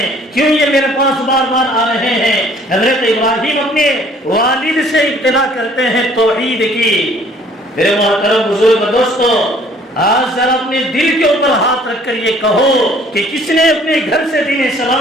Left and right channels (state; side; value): normal; both; correlation 0.57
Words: کیوں یہ میرے پاس بار بار آ رہے ہیں۔ حضرت ابراہیم اپنے والد سے ابتدا کرتے ہیں توحید کی۔ میرے محترم بزرگ دوستو، آج ذرا اپنے دل کے اوپر ہاتھ رکھ کر یہ کہو کہ کس نے اپنے گھر سے دین